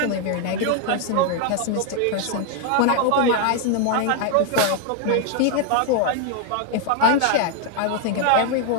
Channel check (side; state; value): both; different; correlation 0.00